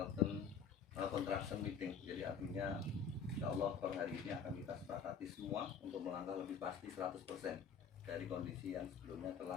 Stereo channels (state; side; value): quieter; right; 6.4 dB